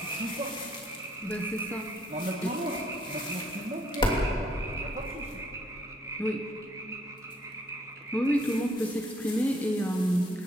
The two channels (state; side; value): normal; both; correlation 0.68